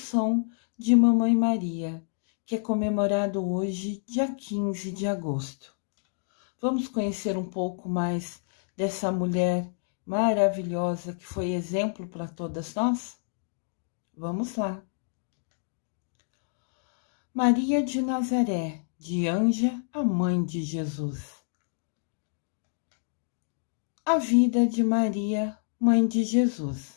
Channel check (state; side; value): silent; right; digital silence